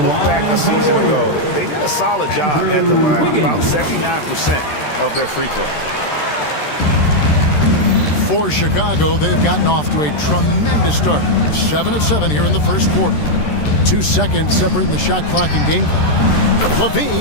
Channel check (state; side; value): late; right; 13 ms